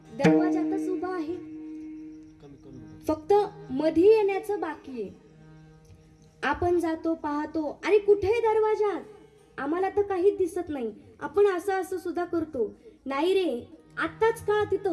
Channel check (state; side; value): identical; both; correlation 1.00